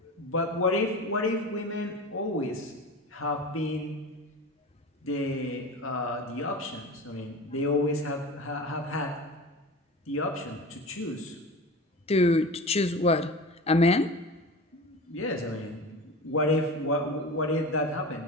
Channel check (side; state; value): both; normal; correlation 0.32